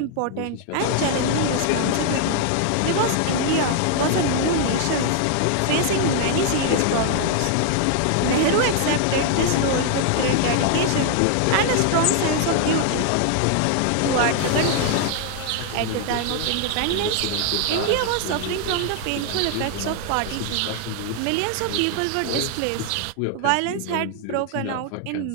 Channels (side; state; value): both; different; correlation 0.00